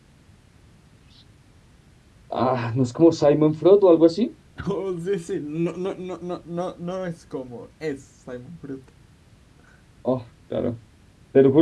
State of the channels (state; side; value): identical; both; correlation 1.00